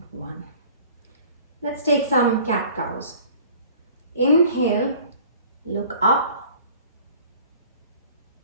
1. Let's take some cat cows. Inhale, look up.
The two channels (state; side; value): inverted; both; correlation -0.49